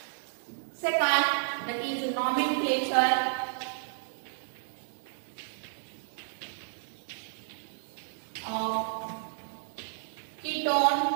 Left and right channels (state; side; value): silent; left; 57 dB below the other